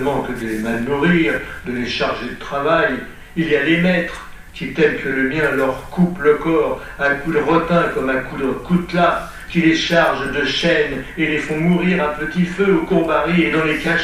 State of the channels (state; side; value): identical; both; correlation 1.00